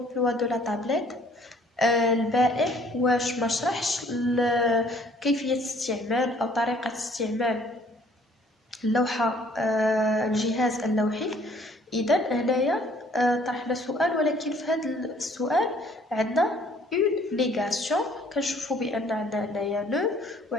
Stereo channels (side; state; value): both; normal; correlation 0.59